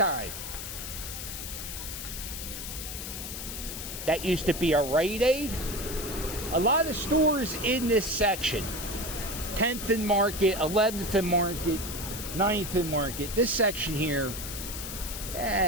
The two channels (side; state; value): left; noise; hiss, 7 dB below the sound